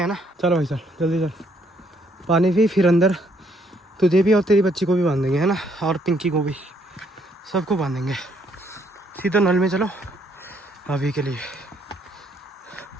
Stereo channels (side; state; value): both; normal; correlation 0.69